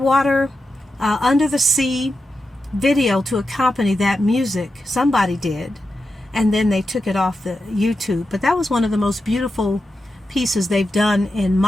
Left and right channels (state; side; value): normal; both; correlation 0.89